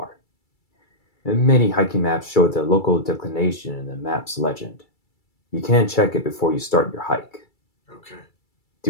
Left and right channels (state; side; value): late; right; 2.3 ms